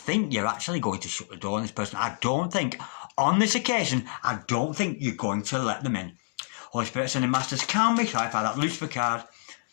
you're actually going to shut the door on this person. I don't think, on this occasion, I don't think you're going to let them in. Holy Spirit, Sending Masters, can we clarify that Lucifer card?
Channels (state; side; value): silent; right; digital silence